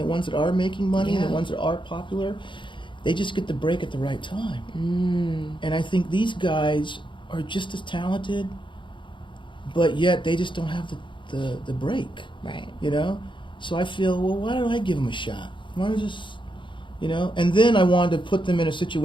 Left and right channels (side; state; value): right; late; 0.23 ms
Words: ones that are making money, and the ones that are popular, they just get the break at the right time. And I think these guys are just as talented, but yet they just don't have the break. Right. So I feel, well, why don't I give them a shot? Why don't I just, And then I wanted to put them in a